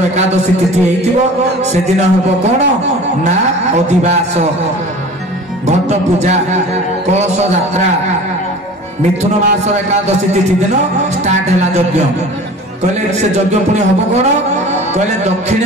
एकादशी तिथि हेतिबो से दिन हेबो कौन ना अधिवास घट पूजा कलश यात्रा मिथुन मासर एकादशी तिथि दिन स्टार्ट हैला यज्ञ। कहले से यज्ञ पुणी हबो कौन कहले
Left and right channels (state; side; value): normal; both; correlation 0.40